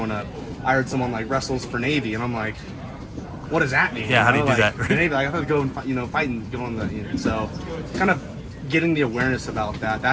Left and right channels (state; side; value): identical; both; correlation 1.00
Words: up, I heard someone like wrestles for Navy, and I'm like, what does that mean? Yeah, how do you do that? The Navy, like, I thought to go and, you know, fight and go on the, you know, so kind of getting the awareness about